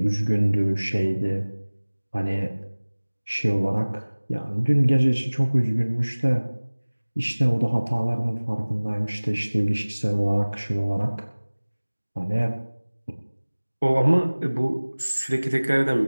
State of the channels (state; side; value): inverted; both; correlation -1.00